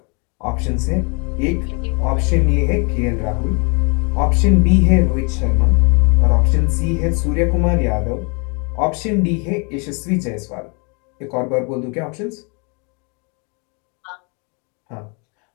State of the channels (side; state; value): right; quieter; 33.9 dB